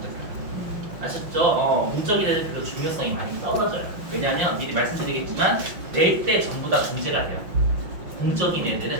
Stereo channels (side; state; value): left; late; 5.9 ms